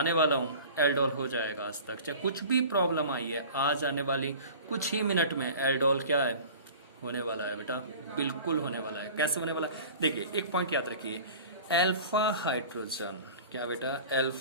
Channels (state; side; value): inverted; both; correlation -0.41